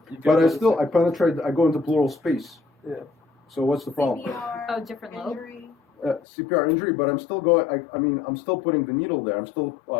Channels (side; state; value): right; drops out; at 6.2 s